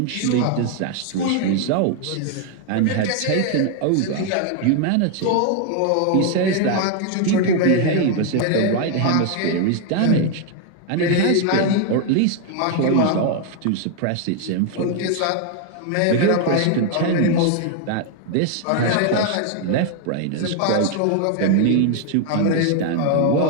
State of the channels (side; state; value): both; different; correlation 0.00